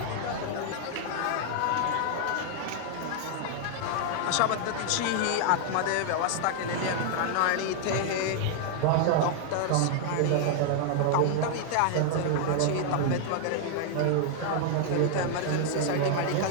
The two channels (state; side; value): different; both; correlation 0.00